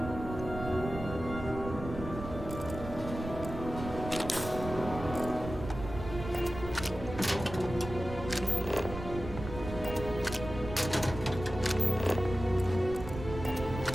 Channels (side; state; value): right; noise; rumble, 9 dB below the sound